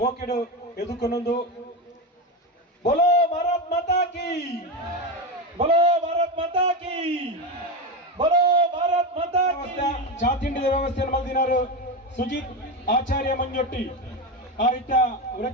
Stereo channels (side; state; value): both; normal; correlation 0.15